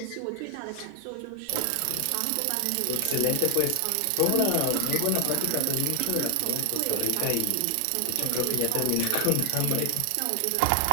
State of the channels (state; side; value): different; both; correlation 0.00